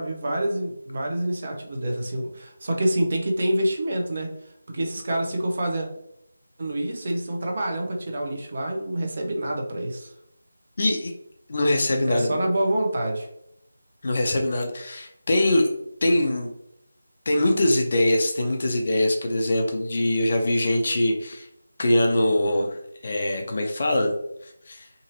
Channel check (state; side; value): inverted; both; correlation -0.93